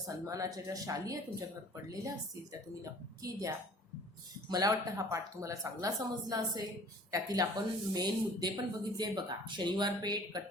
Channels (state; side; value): normal; both; correlation 0.50